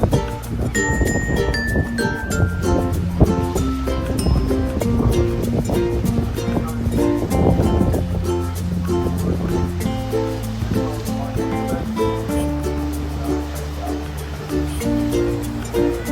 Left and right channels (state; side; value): identical; both; correlation 1.00